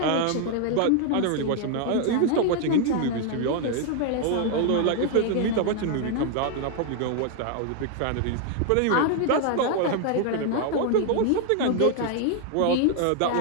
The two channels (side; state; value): both; different; correlation 0.00